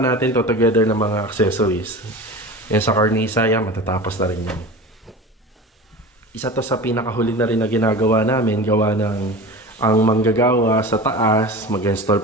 natin to together ng mga accessories. Yan sa cornisa, yan, matatapos na rin yan. Isa to sa pinakahuli na rin na ginagawa namin, gawa ng ang manggagawa sa taas, mag-install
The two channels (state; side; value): normal; both; correlation 0.33